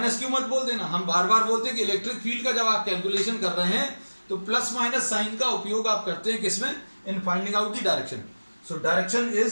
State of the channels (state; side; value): inverted; both; correlation -1.00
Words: मत बोल देना, हम बार बार बोलते हैं कि इलेक्ट्रिक फील्ड का जब आप कैलकुलेशन कर रहे हैं तो प्लस माइनस साइन का उपयोग आप करते हैं किसमें, in finding out the direction. So direction